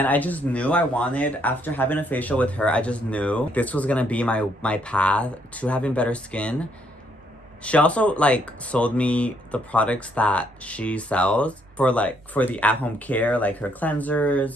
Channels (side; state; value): both; normal; correlation 0.71